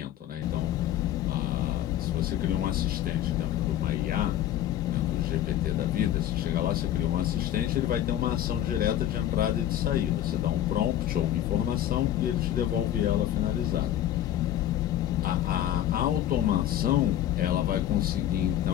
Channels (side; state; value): right; quieter; 12.0 dB